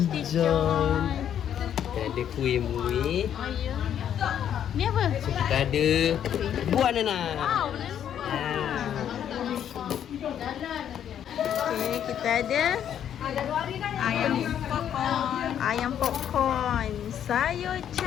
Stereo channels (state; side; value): quieter; right; 9.6 dB